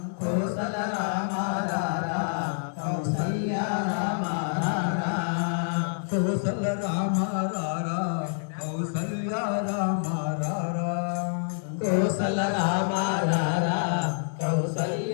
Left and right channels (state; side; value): silent; right; digital silence